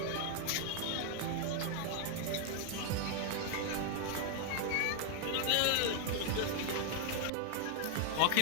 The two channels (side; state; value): both; different; correlation 0.00